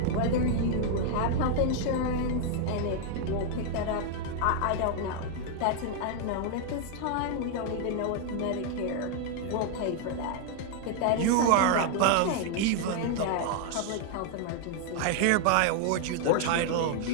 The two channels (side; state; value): both; different; correlation 0.00